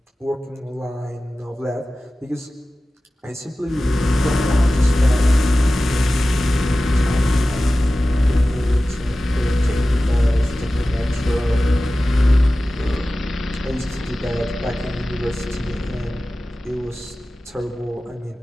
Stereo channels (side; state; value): both; normal; correlation 0.96